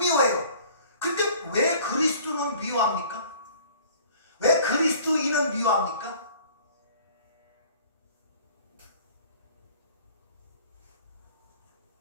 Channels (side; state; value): both; inverted; correlation -0.51